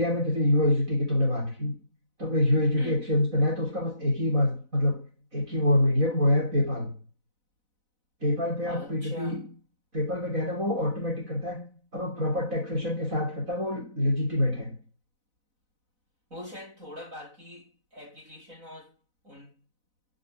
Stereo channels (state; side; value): late; left; 4.0 ms